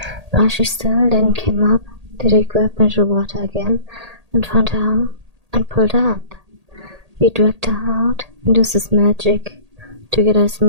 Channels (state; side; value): late; left; 1.8 ms